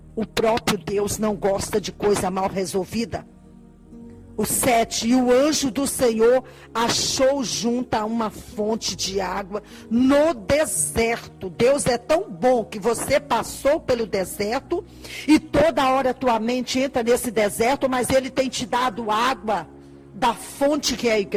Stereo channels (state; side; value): identical; both; correlation 1.00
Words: O próprio Deus não gosta de coisa mal resolvida. O 7, e o anjo do Senhor achou junto a uma fonte de água no deserto. Deus é tão bom que você passou pelo deserto e toda hora tua mente entra nesse deserto, mas Ele tem te dado água da fonte que é a